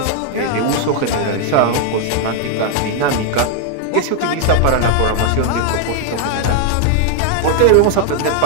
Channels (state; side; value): different; both; correlation 0.00